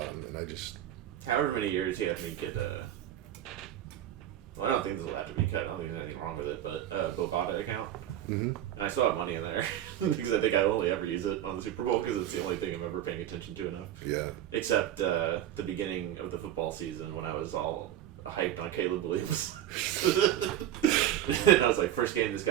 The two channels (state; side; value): quieter; left; 11.9 dB